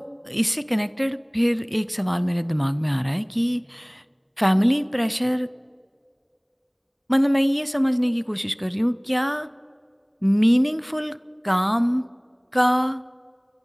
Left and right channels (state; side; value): identical; both; correlation 1.00